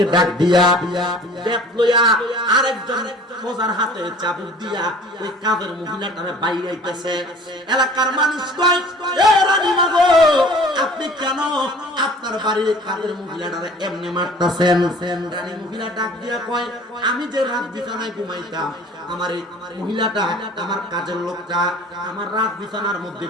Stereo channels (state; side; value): normal; both; correlation 0.48